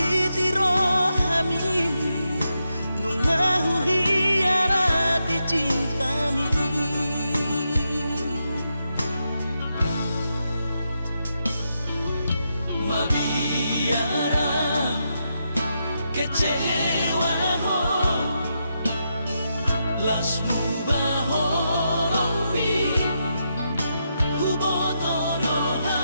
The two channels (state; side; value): inverted; both; correlation -0.84